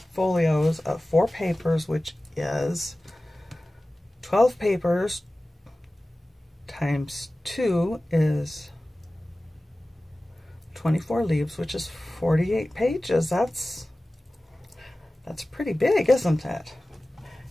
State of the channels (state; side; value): normal; both; correlation 0.97